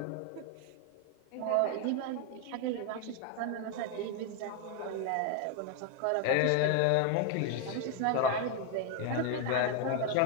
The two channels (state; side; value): different; both; correlation 0.01